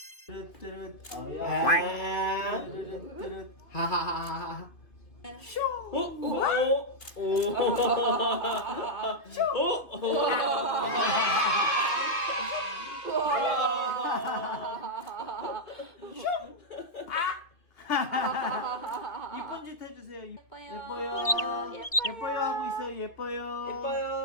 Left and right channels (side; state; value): right; late; 2.5 ms